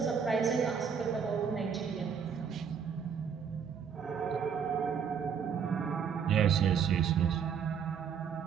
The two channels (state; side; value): quieter; left; 7.0 dB